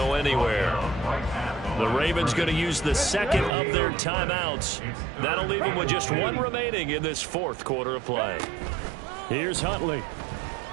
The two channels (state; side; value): drops out; left; at 3.5 s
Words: anywhere. The Ravens going to use the 2nd of their timeouts. That'll leave them with just 1 remaining in this 4th quarter of play. Here's Huntley.